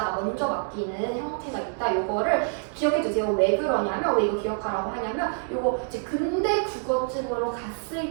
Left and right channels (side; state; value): left; silent; digital silence